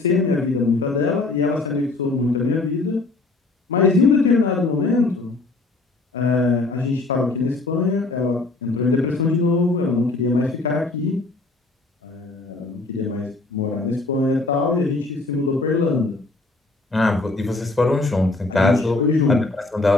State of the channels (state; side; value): quieter; right; 3.3 dB